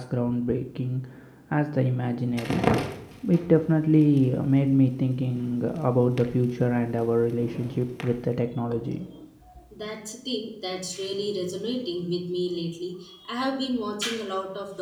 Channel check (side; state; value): both; identical; correlation 1.00